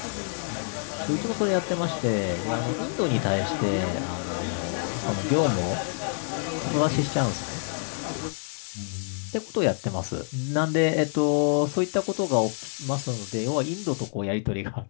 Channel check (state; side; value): silent; right; digital silence